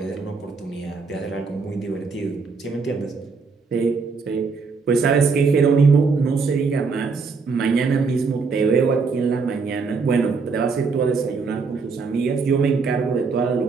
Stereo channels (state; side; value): quieter; left; 4.8 dB